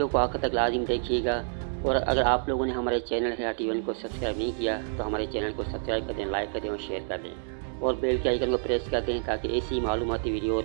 को आखिर तक लाजिम देखिएगा। और अगर आप लोगों ने हमारे चैनल हयाती को सब्सक्राइब नहीं किया तो हमारे चैनल को सब्सक्राइब कर दें, लाइक कर दें और शेयर कर दें और बेल के आइकन को प्रेस कर दें ताकि ऐसी मालूमाती वीडियो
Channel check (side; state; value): left; silent; 59 dB below the other